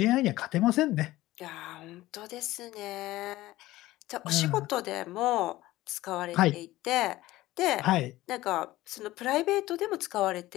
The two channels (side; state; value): right; quieter; 16.9 dB